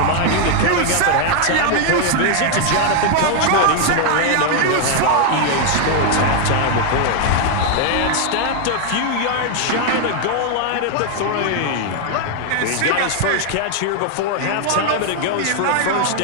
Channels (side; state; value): both; different; correlation 0.00